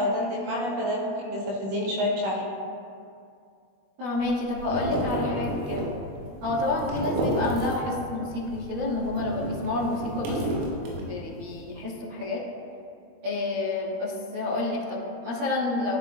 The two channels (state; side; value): late; left; 21 ms